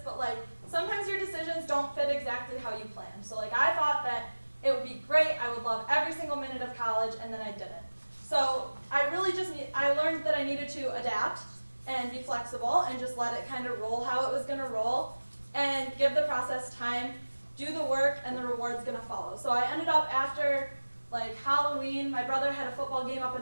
but like sometimes your decisions don't fit exactly how you planned. So like I thought that it would be great, I would love every single minute of college, and then I didn't. So I learned that I needed to adapt and be flexible and just let it kind of roll how it was going to roll and give the process time, do the work, and the reward's going to follow. So I ended up after like Halloween, my brother had a football game up in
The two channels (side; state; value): both; inverted; correlation -1.00